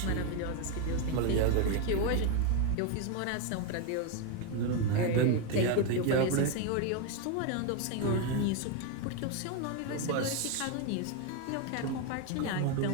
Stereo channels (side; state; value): both; different; correlation 0.02